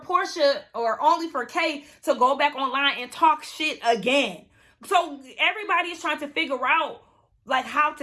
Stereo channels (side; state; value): both; identical; correlation 1.00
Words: Porsha or only for Kay to go back online and talk shit again. So everybody is trying to figure out like how